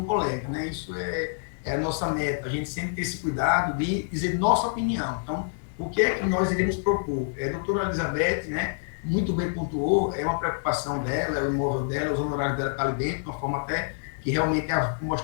colega, né? Isso é a nossa meta. A gente sempre tem esse cuidado de dizer nossa opinião. Então, o que é que nós iremos propor? A doutora Elizabeth, né, muito bem pontuou, é uma preocupação dela, é o imóvel dela, os honorários dela estão ali dentro, de uma forma até que realmente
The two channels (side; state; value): right; silent; digital silence